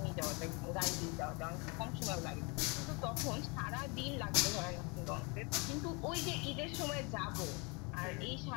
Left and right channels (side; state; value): right; quieter; 30.3 dB